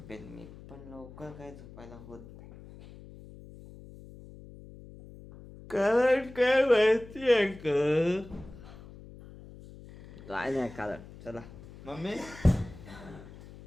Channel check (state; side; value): noise; left; hum, 18 dB below the sound